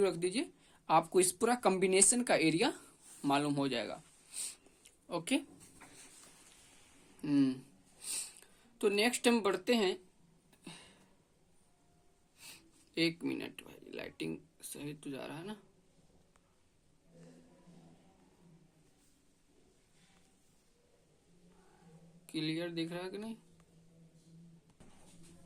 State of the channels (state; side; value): identical; both; correlation 1.00